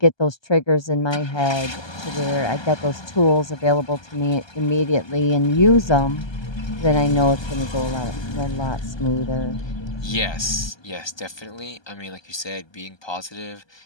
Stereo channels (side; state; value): right; late; 1.2 ms